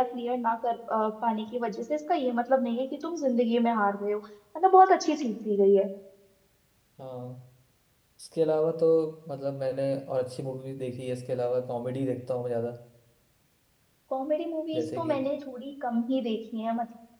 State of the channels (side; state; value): both; identical; correlation 1.00